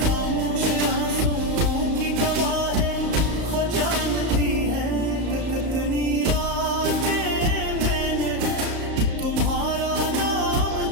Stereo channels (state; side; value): late; left; 34 ms